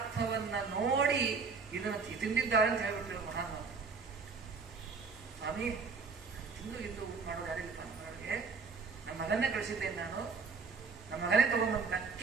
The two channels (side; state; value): left; quieter; 4.9 dB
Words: ನೋಡಿ ಇದನ್ನು ತಿಂದಿದ್ದಾರೆ ಅಂತ ಹೇಳ್ಬಿಟ್ರು ಮಹಾನ್. ಸ್ವಾಮಿ, ತಿಂದು ಇದ್ದು ಊಟ ಮಾಡೋದು ಯಾರಿಲ್ಲ ಮಾಡೋರಿಗೆ. ನಮ್ಮ ಮಗನ್ನೇ ಕಳಿಸಿದ್ದೇನೆ ನಾನು, ನಮ್ಮ ಮಗನೇ ತಗೊಂಡ್ಬಂತ